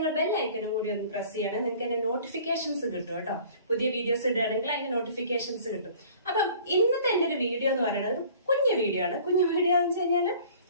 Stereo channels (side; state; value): both; inverted; correlation -0.50